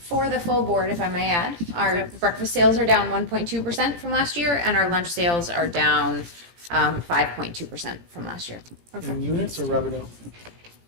the full board, if I may add, our breakfast sales are down 1.2% from last year, and our lunch sales are down 5.2% from last year. In units or revenue?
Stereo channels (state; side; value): late; left; 17 ms